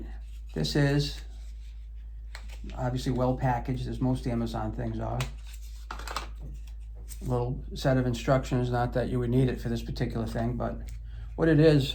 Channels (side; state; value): both; identical; correlation 1.00